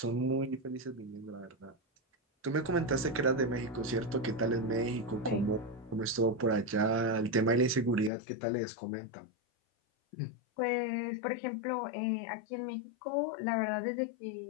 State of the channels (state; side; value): drops out; right; at 8.1 s